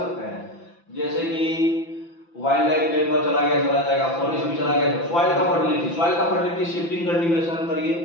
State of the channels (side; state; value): right; late; 5.9 ms